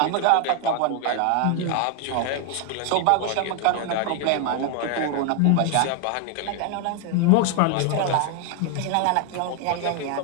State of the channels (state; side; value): different; both; correlation 0.01